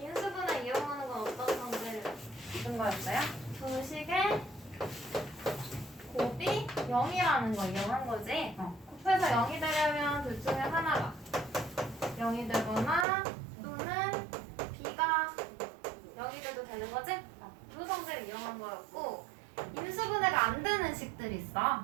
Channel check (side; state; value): left; drops out; at 13.1 s